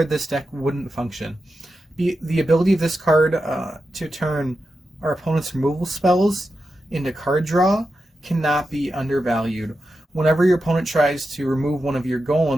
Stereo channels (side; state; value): both; normal; correlation 0.89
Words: this deck wouldn't function. The ability of this card to turn our opponent's removal spells into card draw cannot be undervalued. Whenever your opponent tries to remove one of your